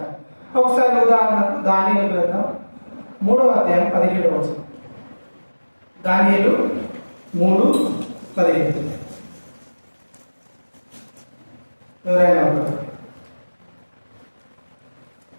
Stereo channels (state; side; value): inverted; both; correlation -1.00